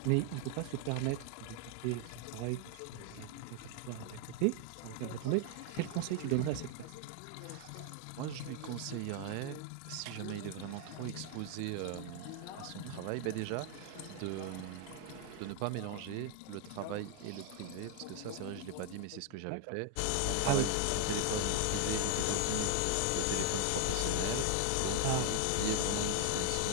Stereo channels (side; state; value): both; different; correlation 0.00